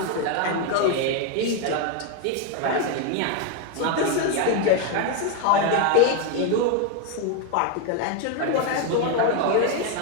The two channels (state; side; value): different; both; correlation 0.02